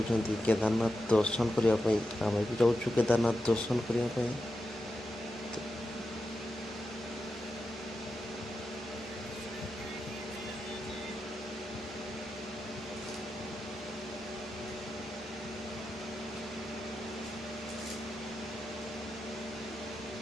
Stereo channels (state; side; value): normal; both; correlation 0.89